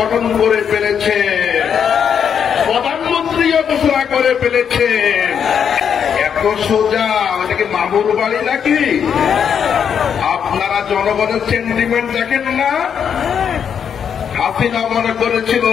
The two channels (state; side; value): quieter; right; 7.7 dB